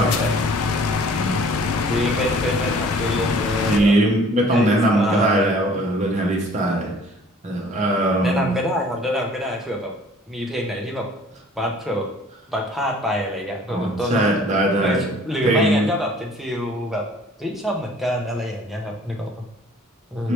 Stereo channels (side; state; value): both; normal; correlation 0.53